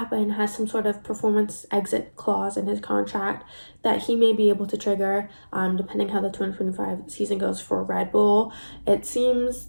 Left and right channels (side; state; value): both; inverted; correlation -1.00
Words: has some sort of performance exit clause in his contract that he may be able to trigger depending how the 2025 season goes for Red Bull. It seems